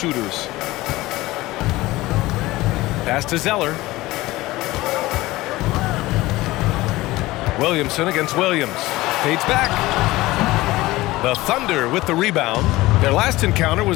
Pass to Zeller. Williamson against Williams. Fades back. The Thunder with the rebound. Their last encounter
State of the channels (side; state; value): right; quieter; 18.7 dB